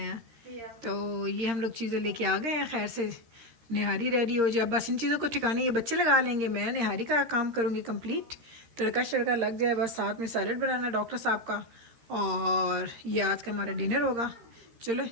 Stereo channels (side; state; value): left; late; 13 ms